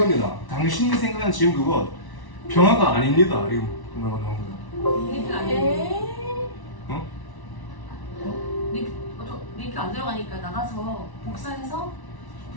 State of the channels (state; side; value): late; right; 1.1 ms